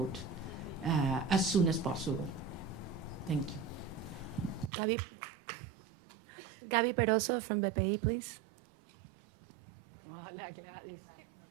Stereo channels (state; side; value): drops out; left; at 4.7 s